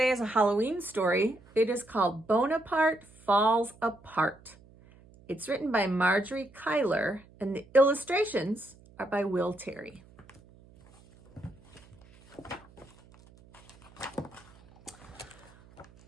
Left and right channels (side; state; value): right; noise; hum, 25 dB below the sound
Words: is a Halloween story. It is called Bonaparte Falls Apart. It's written by Marjorie Kyler, and the illustrations are by Will Terry.